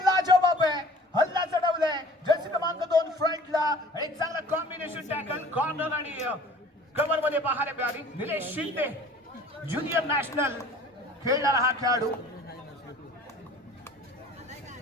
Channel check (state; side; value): normal; both; correlation 0.48